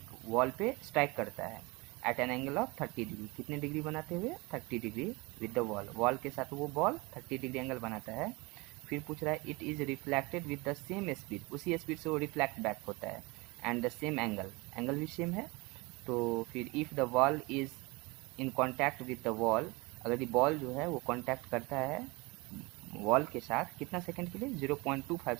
वॉल पे स्ट्राइक करता है at an angle of 30 degree, कितने डिग्री बनाते हुए 30 degree with the wall, wall के साथ वो बॉल 30 डिग्री एंगल बनाता है। फिर पूछ रहा है it is reflected with the same speed, उसी स्पीड से वो रिफ्लेक्ट बैक होता है, and the same angle, angle भी सेम है। तो फिर if the wall is in contact with the wall, अगर ये बॉल जो है वो कॉन्टैक्ट करता है वॉल के साथ कितना सेकंड के लिए, 0.25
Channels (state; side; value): quieter; left; 25.1 dB